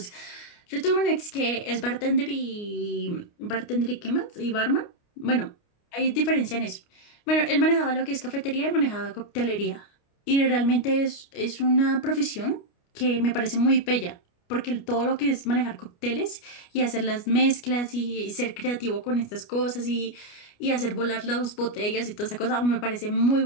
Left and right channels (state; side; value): late; right; 29 ms